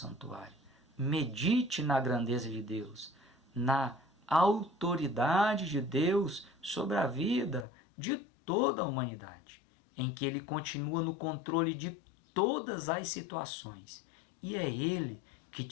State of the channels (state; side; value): drops out; right; at 7.7 s